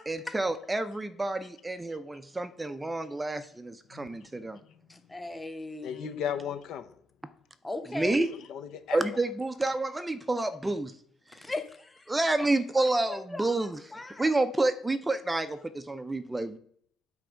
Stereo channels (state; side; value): normal; both; correlation 0.92